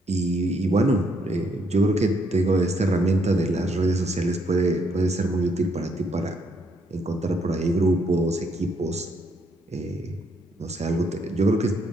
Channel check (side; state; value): both; normal; correlation 0.72